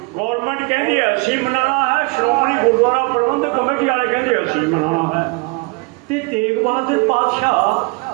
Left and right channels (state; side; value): quieter; left; 28.6 dB